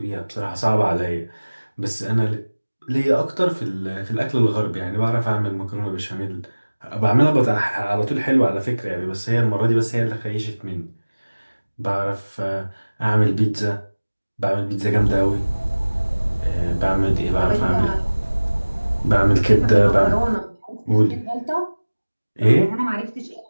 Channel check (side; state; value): both; inverted; correlation -1.00